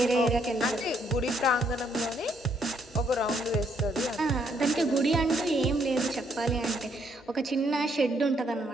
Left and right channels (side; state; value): both; normal; correlation 0.71